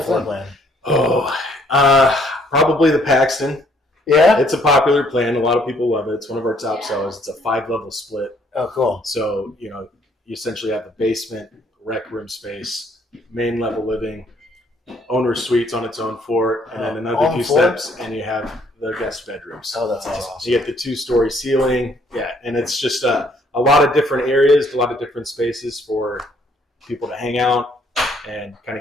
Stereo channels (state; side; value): normal; both; correlation 0.65